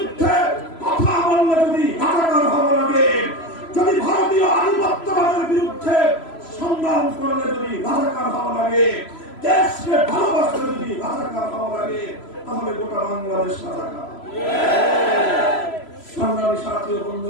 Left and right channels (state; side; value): late; right; 3.0 ms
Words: কথা বললে যদি রাজাকার হওয়া লাগে, যদি ভারতীয় আধিপত্যবাদের বিরুদ্ধে সংগ্রাম করলে যদি রাজাকার হওয়া লাগে, দেশকে ভালোবাসলে যদি রাজাকার হওয়া লাগে, তাহলে গোটা বাংলাদেশ রাজাকার। সংগ্রামী সাথী ও